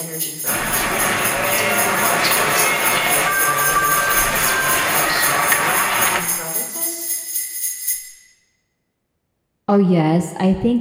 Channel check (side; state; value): both; identical; correlation 1.00